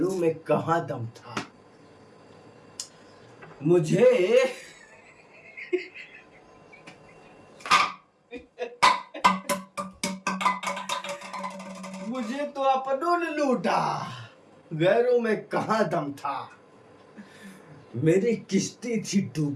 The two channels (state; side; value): identical; both; correlation 1.00